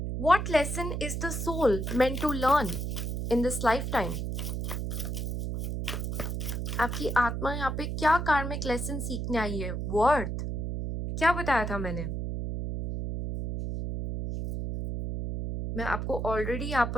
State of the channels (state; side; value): noise; right; hum, 3 dB below the sound